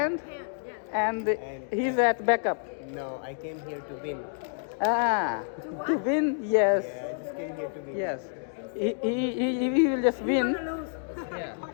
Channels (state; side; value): silent; right; digital silence